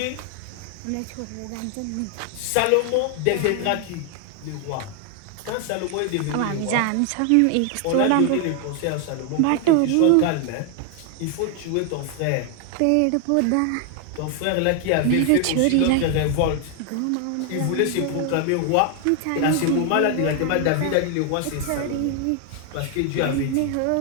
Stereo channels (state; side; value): different; both; correlation 0.00